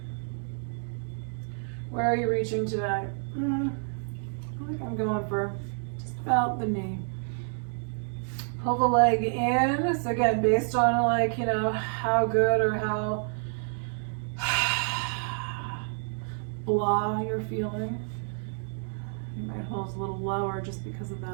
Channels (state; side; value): silent; left; 59 dB below the other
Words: Where are you reaching today? I think I'm going for just about the knee. Pull the leg in. So again, based on like, how good or how blah you're feeling. You might hold a little lower just because of